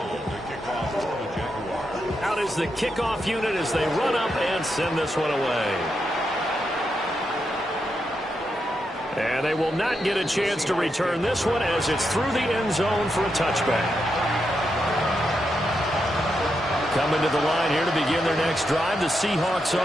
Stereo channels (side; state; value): both; normal; correlation 0.84